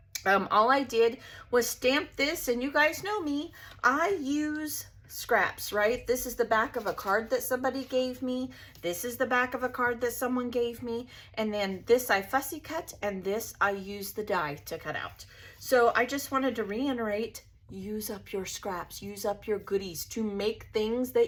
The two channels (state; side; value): identical; both; correlation 1.00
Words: all I did was stamp this, and you guys know me, I use scraps, right? This is the back of a card that somebody gave me. This is the back of a card that someone gave me. And then this I fussy cut, and this I use the die to cut out. So I just wanted to reiterate, use up your scraps, use up your goodies to make things